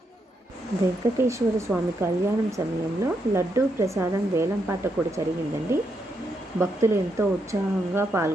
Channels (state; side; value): normal; both; correlation 0.80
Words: వెంకటేశ్వర స్వామి కళ్యాణం సమయంలో లడ్డూ ప్రసాదం వేలంపాట కూడా జరిగిందండి. భక్తులు ఎంతో ఉత్సాహంగా